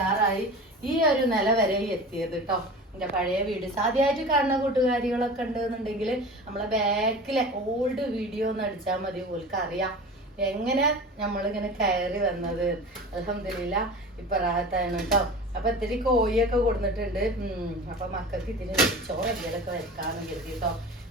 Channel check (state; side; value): normal; both; correlation 0.35